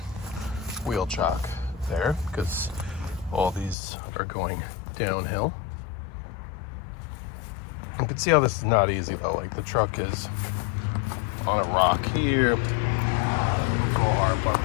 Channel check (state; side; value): drops out; right; at 3.8 s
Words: Wheel chock there, because all these are going downhill. You can see how this is not easy though. Like the truck is on a rock here. But